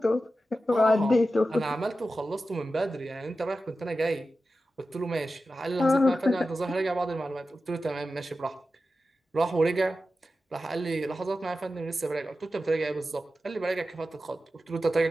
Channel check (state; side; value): normal; both; correlation 0.92